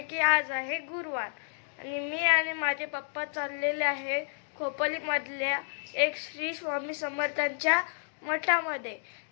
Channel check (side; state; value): right; silent; digital silence